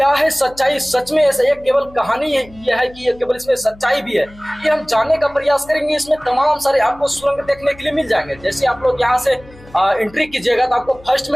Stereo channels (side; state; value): left; noise; hum, 23 dB below the sound